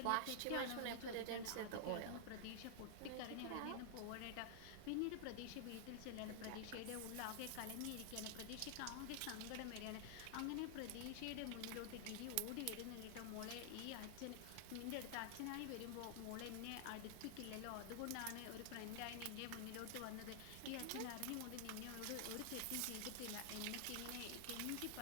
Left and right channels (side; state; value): both; different; correlation 0.00